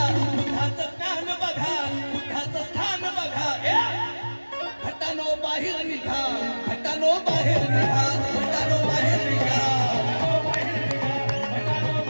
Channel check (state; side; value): inverted; both; correlation -1.00